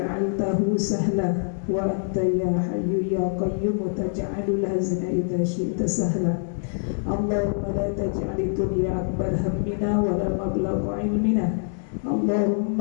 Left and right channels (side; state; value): right; silent; 62 dB below the other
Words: sahla wa anta ya hayyu ya qayyum taj'alul hazna idza syi'ta sahla. Allahumma la taj'al dunya akbar hammina wa la mablagha ilmina.